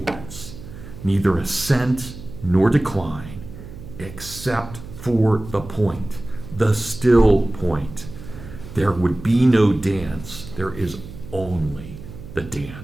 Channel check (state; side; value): noise; right; hum, 14 dB below the sound